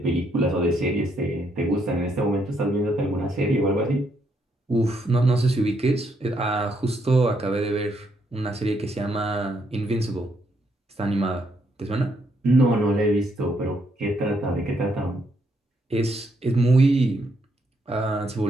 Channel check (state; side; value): normal; both; correlation 0.74